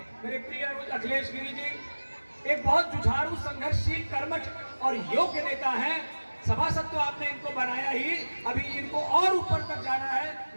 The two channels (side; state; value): both; inverted; correlation -1.00